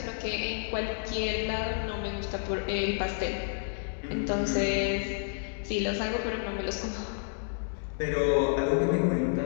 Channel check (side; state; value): right; silent; digital silence